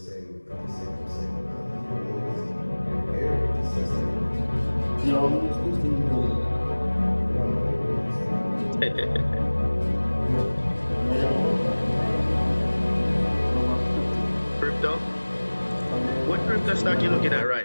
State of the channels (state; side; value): inverted; both; correlation -1.00